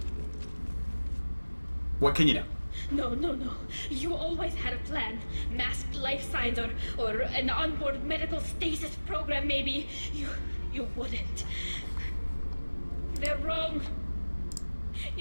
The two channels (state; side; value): inverted; both; correlation -1.00